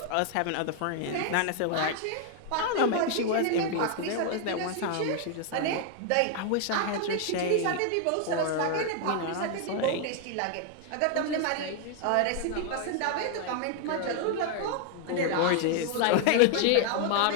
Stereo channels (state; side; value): different; both; correlation 0.00